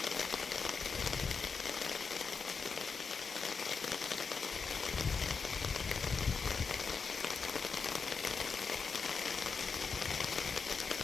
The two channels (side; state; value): right; quieter; 5.2 dB